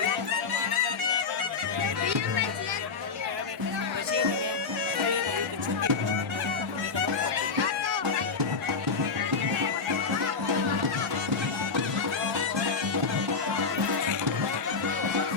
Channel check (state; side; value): quieter; right; 4.9 dB